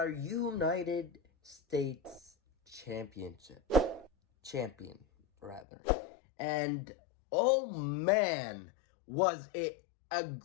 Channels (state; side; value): drops out; right; at 5.7 s